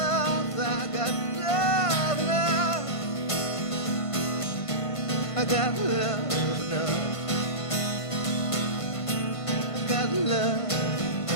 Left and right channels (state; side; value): late; right; 1.5 ms